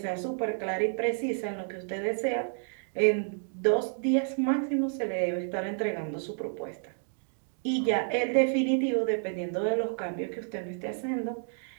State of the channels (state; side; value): silent; left; 58 dB below the other